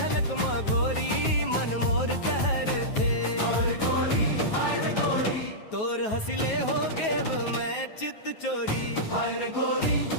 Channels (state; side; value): late; right; 9.3 ms